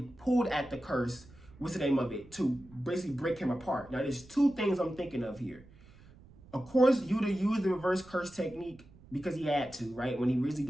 pulled at the curse, what's the name of it, to basically break him apart. Now, there's two things I'm thinking of here. Of course, Yuta used the reverse curse technique because he had to, right? When he really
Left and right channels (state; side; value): noise; right; rumble, 23 dB below the sound